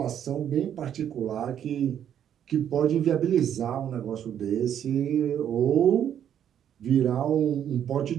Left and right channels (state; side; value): quieter; left; 9.6 dB